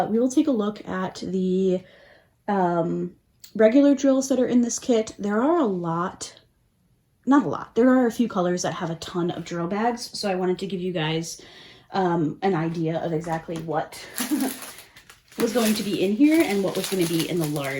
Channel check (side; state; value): both; identical; correlation 1.00